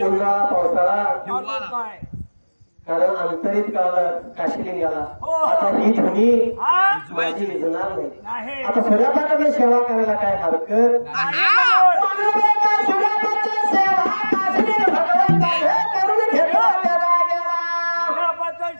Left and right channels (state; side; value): inverted; both; correlation -1.00